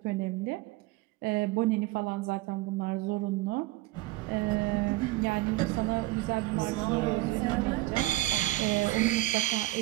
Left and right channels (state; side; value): quieter; left; 18.6 dB